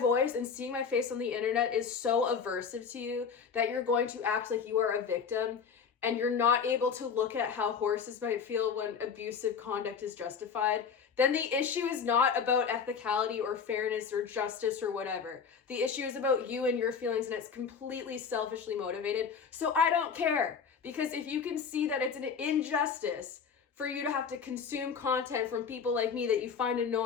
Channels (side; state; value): right; quieter; 6.3 dB